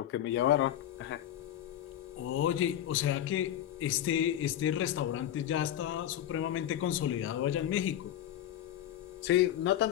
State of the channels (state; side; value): quieter; right; 11.6 dB